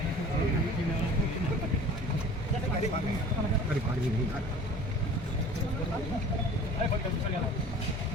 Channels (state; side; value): normal; both; correlation 0.44